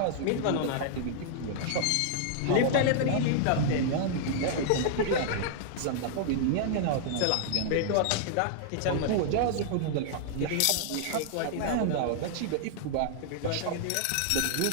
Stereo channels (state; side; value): different; both; correlation -0.01